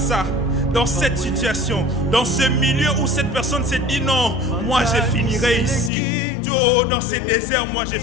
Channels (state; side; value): drops out; right; at 5.9 s